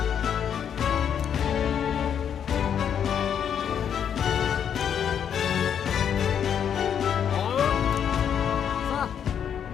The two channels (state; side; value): quieter; right; 8.5 dB